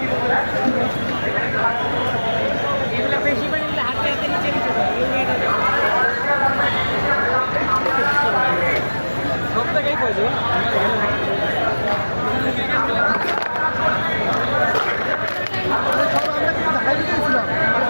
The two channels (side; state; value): both; inverted; correlation -1.00